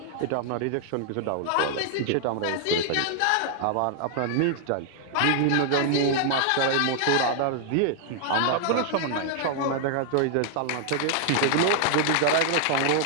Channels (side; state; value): both; different; correlation -0.01